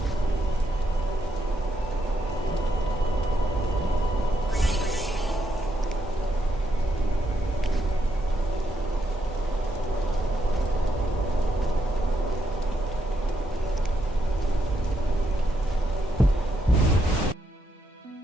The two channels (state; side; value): normal; both; correlation 0.79